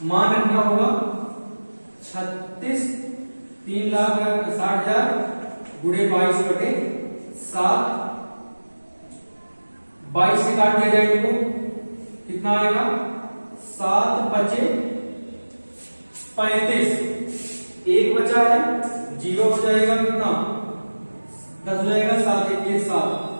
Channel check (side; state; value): both; inverted; correlation -1.00